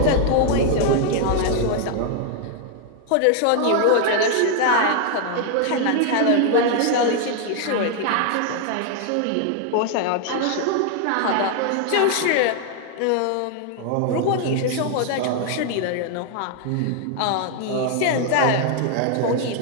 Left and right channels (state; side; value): different; both; correlation 0.00